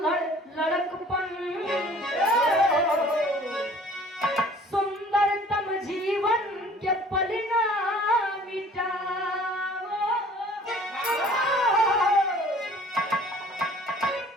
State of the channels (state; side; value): normal; both; correlation 0.51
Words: लड़कपन, सुंदरतम जीवन के पल ना मिटाओ,